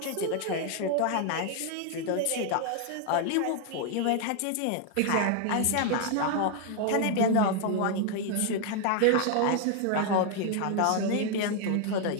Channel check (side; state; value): both; different; correlation 0.00